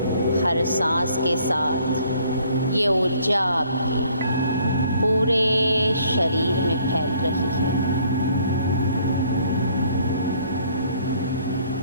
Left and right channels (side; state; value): both; inverted; correlation -0.62